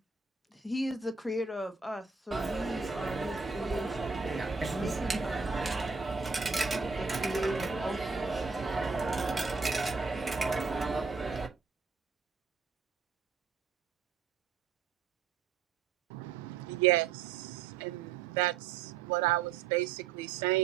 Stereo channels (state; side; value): quieter; left; 5.1 dB